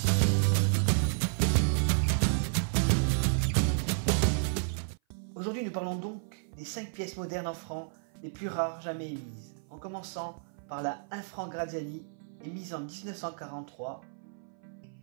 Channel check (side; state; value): left; silent; 56 dB below the other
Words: Aujourd'hui, nous parlons donc des 5 pièces modernes en francs les plus rares jamais émises, en commençant par la 1 franc Graziani, émise en 1943,